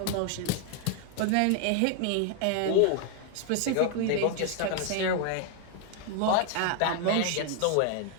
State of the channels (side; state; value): both; different; correlation 0.00